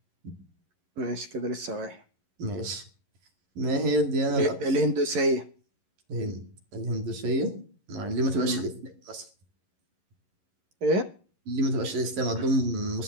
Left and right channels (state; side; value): late; left; 11 ms